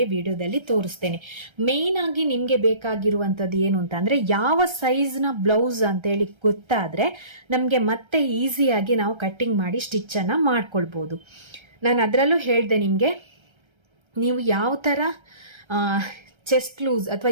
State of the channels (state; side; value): late; left; 1.3 ms